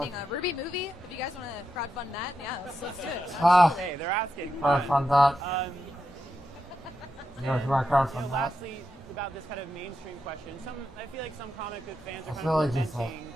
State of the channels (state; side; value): normal; both; correlation 0.86